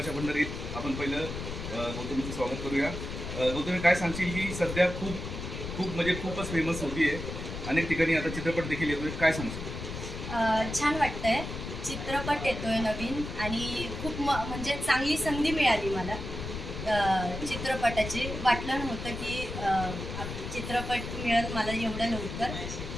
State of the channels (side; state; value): left; noise; rumble, 7 dB below the sound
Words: पंढरीत आपण पहिलं गौतमीचं स्वागत करूया। गौतमी, काय सांगशील की सध्या खूपच फेमस होती आहे, अनेक ठिकाणी आता चित्रपट देखील येतोय, काय सांगशील? छान वाटतंय, चित्रपट येतोय नवीन आणि खूप म्हणजे चांगली संधी मिळाली मला चित्रपटाची। वाटलं नव्हतं की चित्रपट मिळेल मला एवढ्या लवकर,